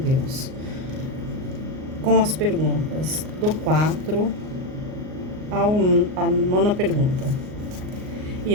com as perguntas do 4 à 9ª pergunta.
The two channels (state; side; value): late; left; 38 ms